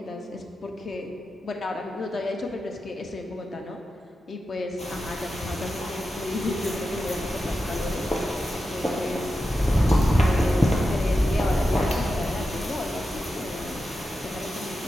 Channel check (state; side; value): normal; both; correlation 0.91